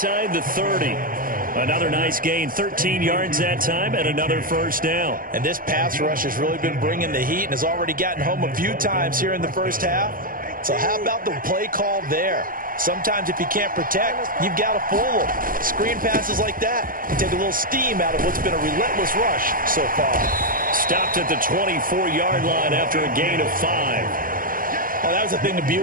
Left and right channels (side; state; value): left; late; 0.41 ms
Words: the 30. Another nice gain, 13 yards that time, and another 1st down. And this pass rush has really been bringing the heat and has already gotten home a few times here in the 1st half. So how about the play call there? Sometimes if you can't protect, you've got to fool them. Screen passes like that can take a little steam out of what's been a relentless rush so far. Stopped at the 24-yard line after a gain of 5. Oh, that was a thing of